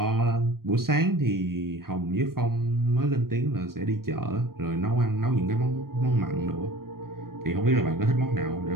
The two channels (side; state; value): left; late; 0.93 ms